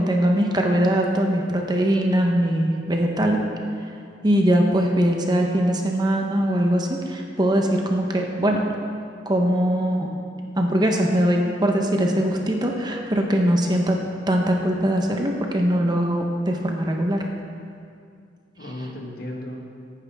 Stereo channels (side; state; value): both; normal; correlation 0.81